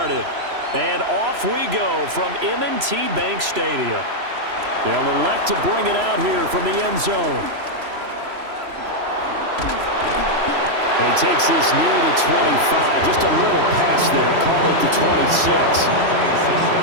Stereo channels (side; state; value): left; late; 3.0 ms